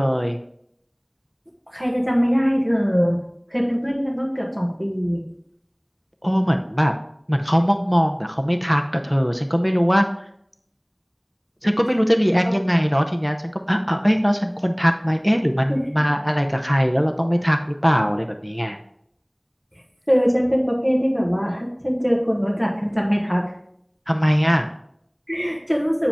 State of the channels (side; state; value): both; identical; correlation 1.00